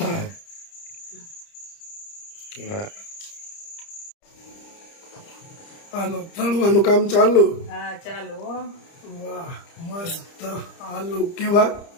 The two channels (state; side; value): late; right; 30 ms